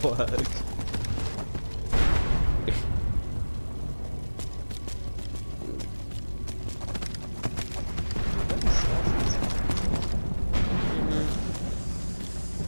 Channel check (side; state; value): both; inverted; correlation -1.00